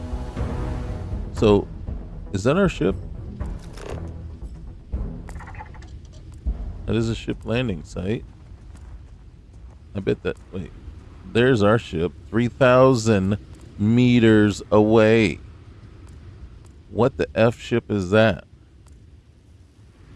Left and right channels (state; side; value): identical; both; correlation 1.00